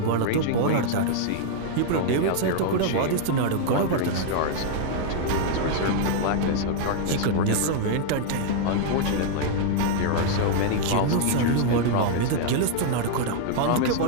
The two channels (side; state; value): both; different; correlation 0.00